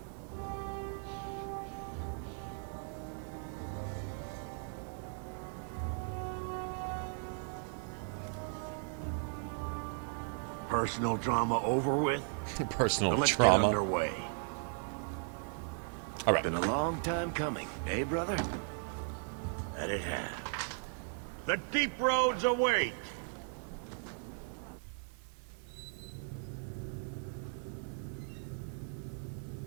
Personal drama over with? Personal Let's trauma. get underway. All right. Been a long time coming, eh, brother? That it has. The deep roads await.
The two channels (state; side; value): silent; left; 53 dB below the other